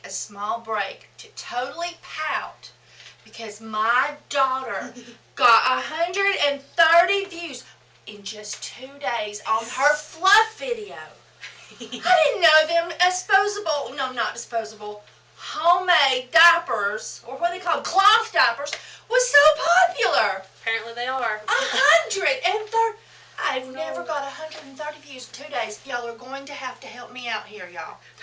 a small break to totally pout because my daughter got 130 views in just 2 days on her fluff video. I didn't know them homemade diapers, or what they call cloth diapers, was so popular. Apparently they are. 130. I've never got 130 views in 2 days. Y'all are going to have to help me out here, y'all.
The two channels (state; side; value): identical; both; correlation 1.00